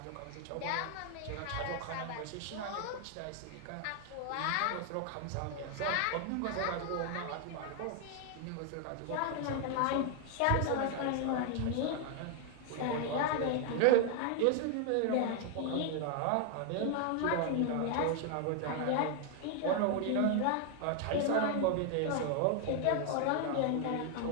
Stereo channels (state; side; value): different; both; correlation 0.00